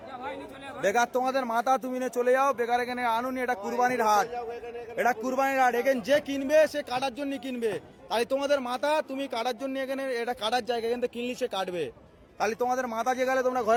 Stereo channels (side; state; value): both; identical; correlation 1.00